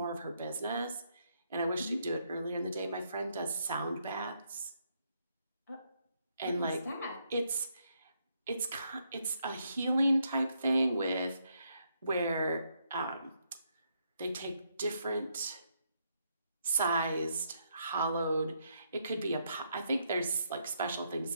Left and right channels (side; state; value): both; inverted; correlation -0.76